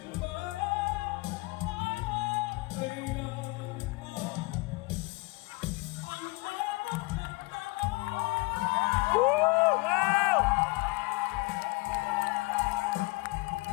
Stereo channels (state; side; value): quieter; right; 24.5 dB